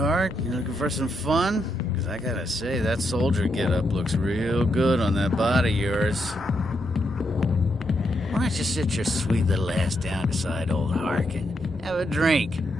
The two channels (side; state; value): both; normal; correlation 0.81